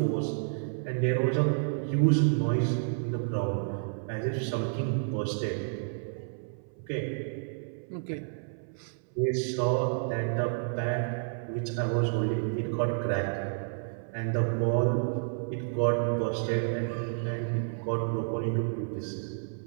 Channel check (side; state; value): left; silent; 58 dB below the other